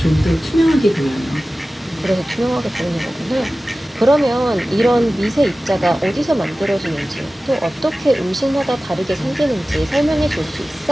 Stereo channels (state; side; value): normal; both; correlation 0.96